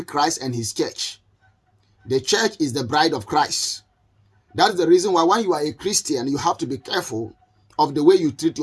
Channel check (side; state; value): both; identical; correlation 1.00